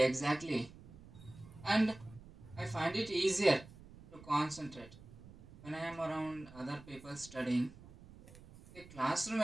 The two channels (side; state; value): right; noise; rumble, 19 dB below the sound